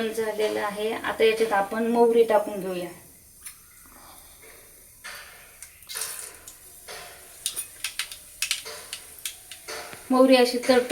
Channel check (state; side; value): identical; both; correlation 1.00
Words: झालेलं आहे. आता याच्यात आपण मोहरी टाकून घेऊया. मोहरी अशी